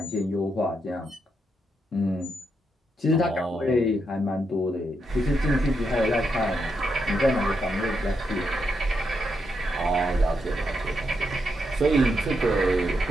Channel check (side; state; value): both; normal; correlation 0.82